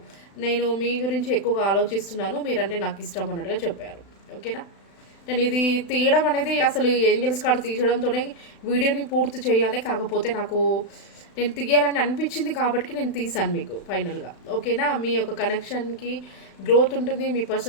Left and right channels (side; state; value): right; late; 36 ms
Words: నేను మీ గురించి ఎక్కువగా ఆలోచిస్తున్నాను, మీరంటే నాకు ఇష్టం అన్నట్టుగా చెప్పారు. ఓకేనా, నేను ఇది తీయడం అనేది అసలు ఏంజల్స్ కార్డ్ తీయడంతోనే వీడియోని పూర్తి చేయాలి. కాకపోతే నేను తీయాలని అనిపించింది కాబట్టి నేను తీసాను మీకు ఫైనల్గా. ఓకేనా, మీ యొక్క కనెక్షన్కి గ్రోత్ ఉంటుంది. మీ